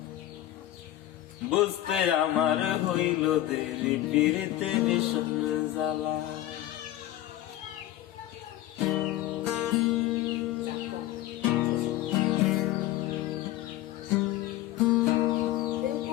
বুঝতে আমার হইল দেরি পিরিতে ভীষণ জ্বালা।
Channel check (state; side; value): quieter; right; 14.5 dB